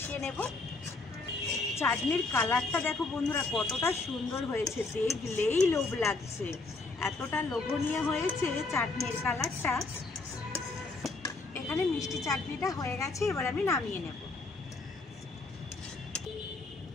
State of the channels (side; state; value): right; quieter; 3.6 dB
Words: নেব। চাটনির কালারটা দেখো বন্ধুরা কতটা সুন্দর হয়েছে, দেখলেই লোভ লাগছে, এতটা লোভনীয় হয়েছে চাটনির কালারটা। এখানে মিষ্টি চাটনিটা হয়ে গেছে, এবার আমি নামিয়ে নেব।